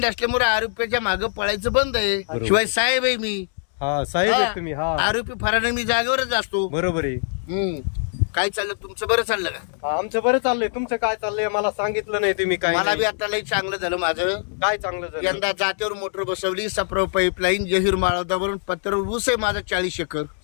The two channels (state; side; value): silent; right; digital silence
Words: असल्यामुळे आरोपीच्या मागे पळायचं बंद आहे. बरोबर. शिवाय साहेब आहे मी. हा साहेब आहेत तुम्ही. हा आरोपी फराने मी जागेवरच असतो. बरोबर आहे. काय चाललं तुमचं? बरं चाललं का? हा, आमचं बरं चाललंय. तुमचं काय चाललंय मला सांगितलं नाही तुम्ही. काय मला बी नाही. आता लई चांगलं झालं माझं. काय चांगलं झालं? यंदा जात्यावर मोटर बसवली, सप्रो पाईपलाईन, जहीर माळवतावरून पत्र्यावर ऊस आहे माझा 40 एकर.